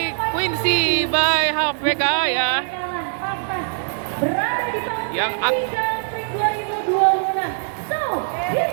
Quincy by HVK ya, yang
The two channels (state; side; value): silent; left; digital silence